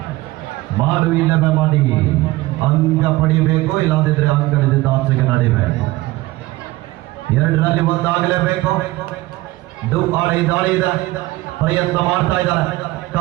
ಮಾಡು ಇಲ್ಲವೇ ಮಾಡಿ ಅಂಕ ಪಡಿಬೇಕು, ಇಲ್ಲದಿದ್ರೆ ಅಂಕದಿಂದ ಆಚೆಗೆ ನಡಿಬೇಕು. 2ರಲ್ಲಿ ಒಂದಾಗಲೇಬೇಕು. ದಾಳಿ ಇದೆ, ಪ್ರಯತ್ನ ಮಾಡ್ತಾ ಇದ್ದಾರೆ,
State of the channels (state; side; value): quieter; left; 19.0 dB